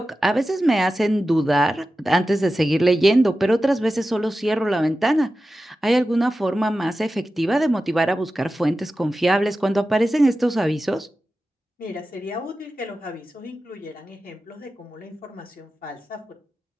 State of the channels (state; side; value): normal; both; correlation 0.93